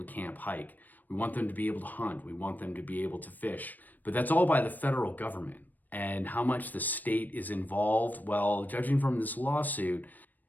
to camp, hike. We want them to be able to hunt. We want them to be able to fish. But that's all by the federal government. And how much the state is involved, well, judging from this lawsuit,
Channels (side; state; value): right; late; 0.086 ms